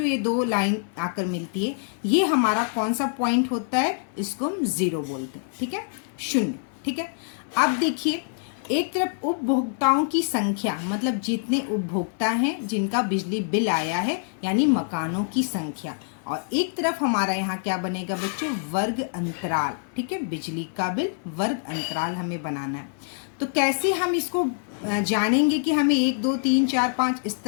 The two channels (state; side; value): silent; right; 59 dB below the other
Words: ये 2 लाइन आकर मिलती है, ये हमारा कौन सा पॉइंट होता है, इसको हम 0 बोलते हैं। ठीक है, 0। ठीक है, अब देखिए एक तरफ उपभोक्ताओं की संख्या, मतलब जितने उपभोक्ता हैं जिनका बिजली बिल आया है, यानी मकानों की संख्या, और एक तरफ हमारा यहाँ क्या बनेगा बच्चों, वर्ग अंतराल। ठीक है, बिजली का बिल वर्ग अंतराल हमें बनाना है। तो कैसे हम इसको जानेंगे कि हमें 1 2 3 4 5 इस